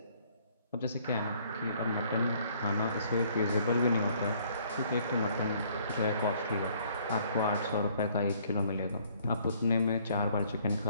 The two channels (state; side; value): inverted; both; correlation -0.62